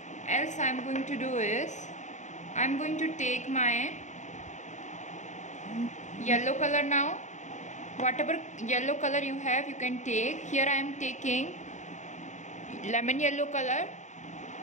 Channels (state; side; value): late; right; 0.35 ms